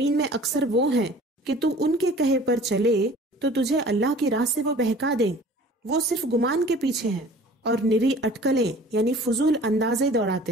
میں اکثر وہ ہیں کہ تو ان کے کہے پر چلے تو تجھے اللہ کی راہ سے وہ بہکا دیں، وہ صرف گمان کے پیچھے ہیں اور نری اٹکلیں یعنی فضول اندازے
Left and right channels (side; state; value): both; normal; correlation 0.47